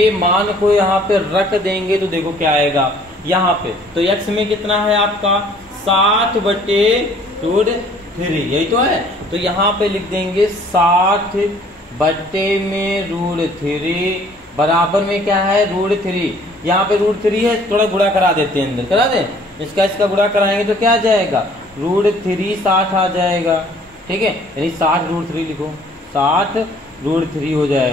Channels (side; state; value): both; normal; correlation 0.57